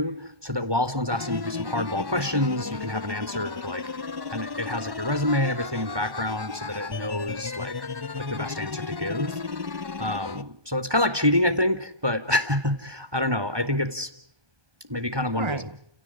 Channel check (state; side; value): late; left; 1.2 ms